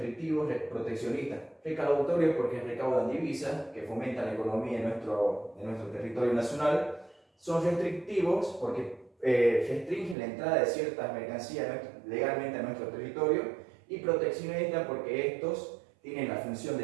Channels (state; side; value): drops out; left; at 10.2 s